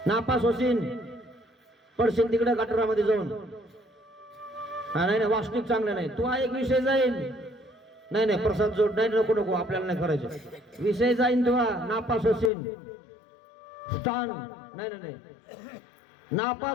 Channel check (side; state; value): right; drops out; at 12.5 s